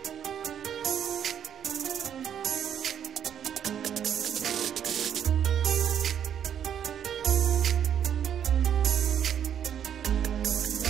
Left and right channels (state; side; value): quieter; left; 9.1 dB